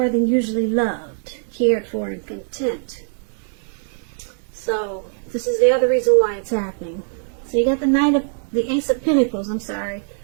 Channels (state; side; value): silent; left; digital silence